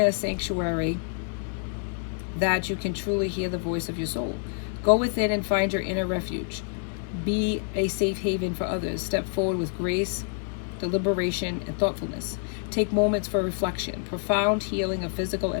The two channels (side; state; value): right; silent; 58 dB below the other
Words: sanctuary that you can truly hear the voice of your soul. Go within and find your inner refuge. Be a safe haven for others. Step forward with grace, deliberation, and thoughtfulness. Take moments for reflection. Profound healing of physical